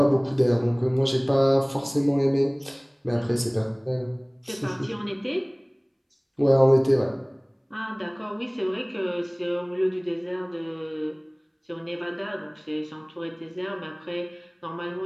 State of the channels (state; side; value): identical; both; correlation 1.00